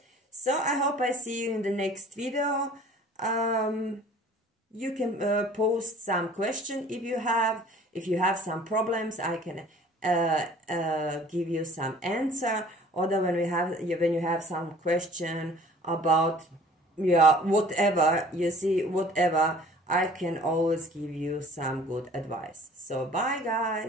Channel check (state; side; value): normal; both; correlation 0.50